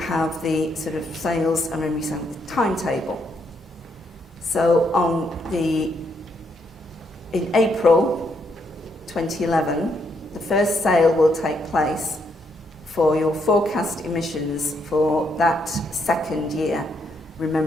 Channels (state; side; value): normal; both; correlation 0.75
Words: the sort of sales and revenue timetable. So in April 2011, the first sale will take place for your forecast emissions for that second year,